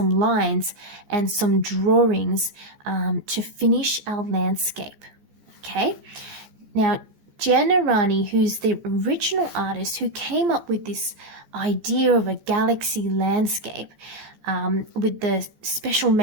lines and some drawings to finish our landscape. Okay? Now, Aranyi, who's the original artist who came up with this idea of a galaxy landscape, with the special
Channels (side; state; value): left; late; 14 ms